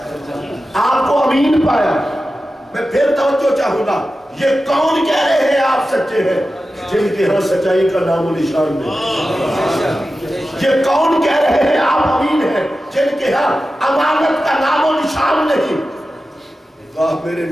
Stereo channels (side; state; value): both; normal; correlation 0.93